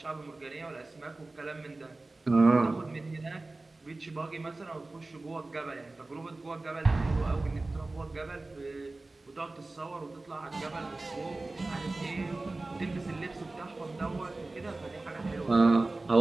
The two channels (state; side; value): quieter; left; 3.1 dB